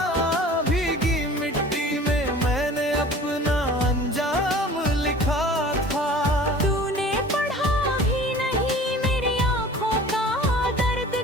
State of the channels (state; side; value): normal; both; correlation 0.44